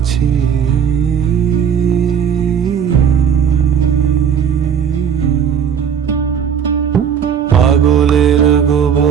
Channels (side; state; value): left; quieter; 7.7 dB